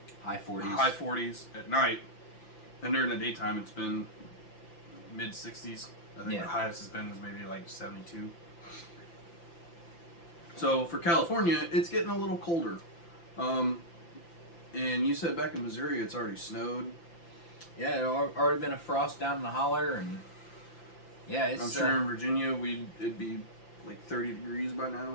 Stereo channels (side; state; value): right; late; 5.9 ms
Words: High 40s. High 40s at night. And during the daytime, it's been mid 60s. I think the highest has been is maybe like 72. So for California, it's getting a little colder. And you said back in Missouri, it's already snowed. Yeah, it already been a frost down in the holler, and yeah, it's. I'm sure in Virginia it'd be like 30 degrees by